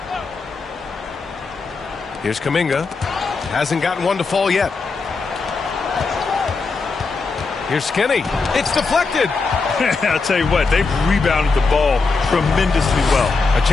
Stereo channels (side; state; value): right; quieter; 4.3 dB